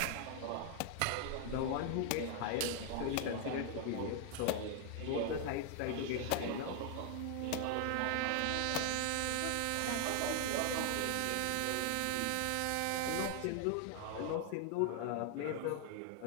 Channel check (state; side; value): different; both; correlation 0.00